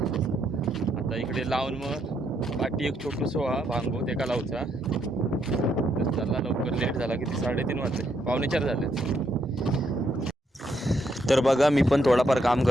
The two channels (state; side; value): normal; both; correlation 0.75